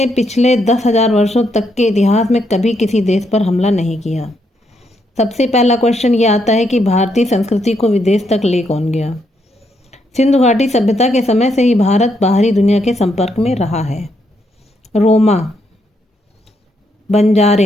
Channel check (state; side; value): normal; both; correlation 0.77